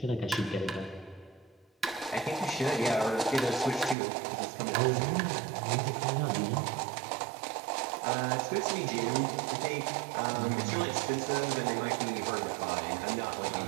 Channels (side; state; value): left; drops out; at 4.0 s